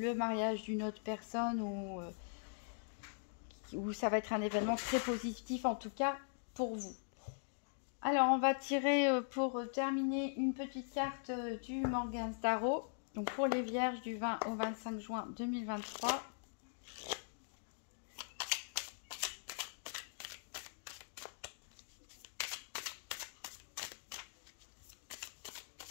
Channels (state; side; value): silent; right; digital silence